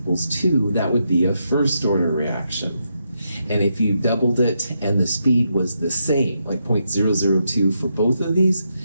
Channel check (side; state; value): both; inverted; correlation -0.82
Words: 2. That would be a first order reaction. And if you doubled it and the speed was the same, like 0.002 for both of these,